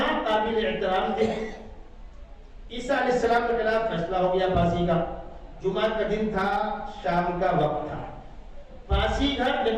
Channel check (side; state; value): both; identical; correlation 1.00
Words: قابل احترام تھے۔ عیسیٰ علیہ السلام کے خلاف فیصلہ ہو گیا پھانسی کا۔ جمعہ کا دن تھا، شام کا وقت تھا۔ پھانسی گھر